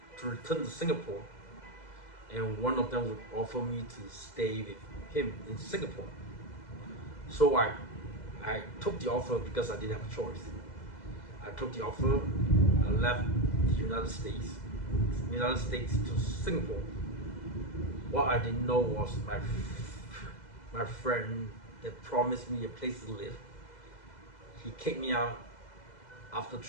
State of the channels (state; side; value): late; right; 2.0 ms